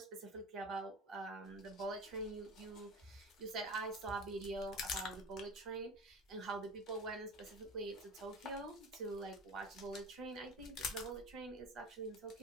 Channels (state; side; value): normal; both; correlation 0.34